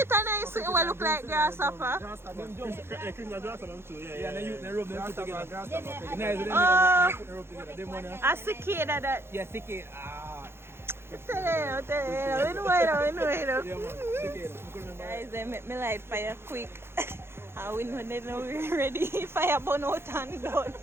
and I see what look like grasshopper. Them jump. Cricket and grass them too. Yeah, they rub them together. Oh, a cicada that. Yeah, cicada. Ah. Tell you, guys, they make me light fire quick. And we know they know we're ready. Fire burn out and done.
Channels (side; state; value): left; late; 0.12 ms